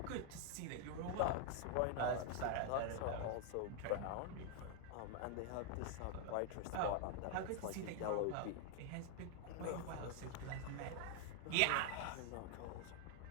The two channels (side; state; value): both; different; correlation 0.00